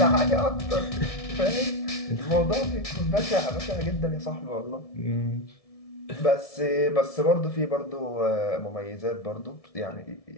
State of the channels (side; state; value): right; late; 1.7 ms